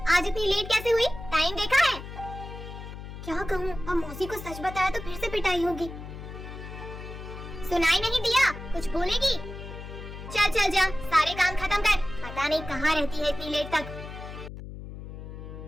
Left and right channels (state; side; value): noise; left; hum, 11 dB below the sound